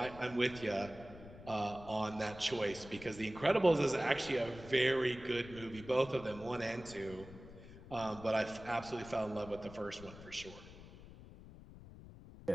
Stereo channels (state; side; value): noise; left; rumble, 16 dB below the sound